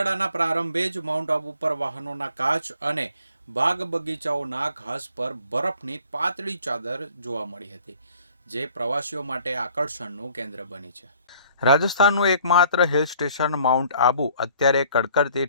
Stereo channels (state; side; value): inverted; both; correlation -0.57